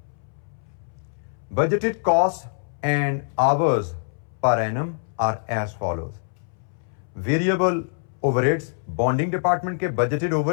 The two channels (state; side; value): silent; right; 62 dB below the other